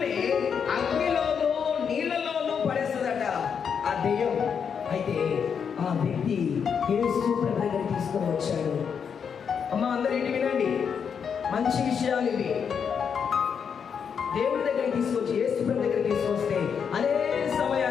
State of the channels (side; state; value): right; quieter; 6.9 dB